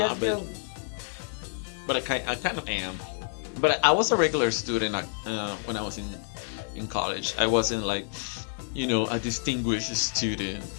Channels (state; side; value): silent; right; 59 dB below the other